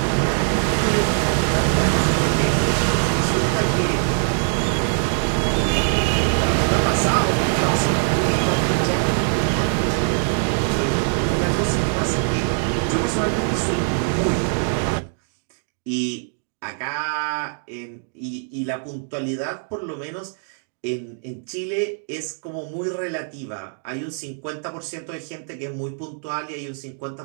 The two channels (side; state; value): left; silent; 63 dB below the other